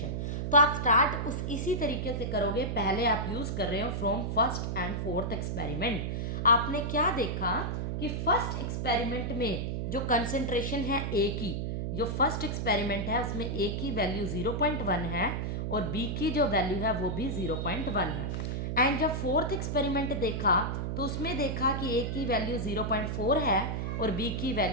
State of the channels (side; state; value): right; noise; hum, 2 dB below the sound